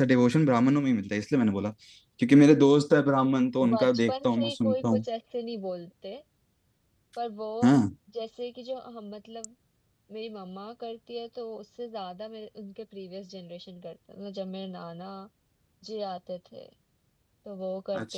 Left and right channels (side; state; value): both; identical; correlation 1.00